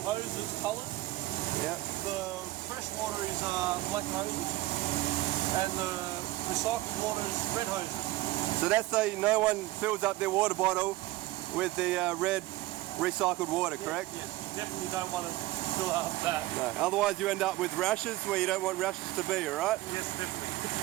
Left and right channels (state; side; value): quieter; left; 17.8 dB